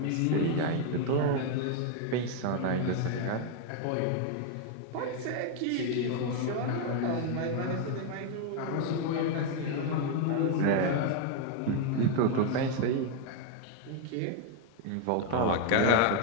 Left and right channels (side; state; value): both; different; correlation 0.01